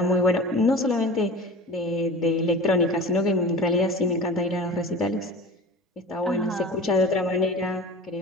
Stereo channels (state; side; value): normal; both; correlation 0.35